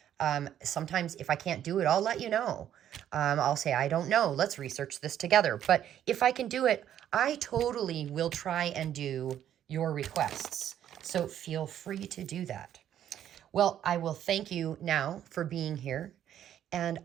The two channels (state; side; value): quieter; left; 10.6 dB